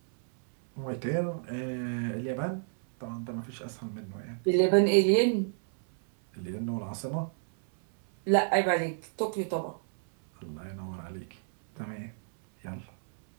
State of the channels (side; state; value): left; silent; 58 dB below the other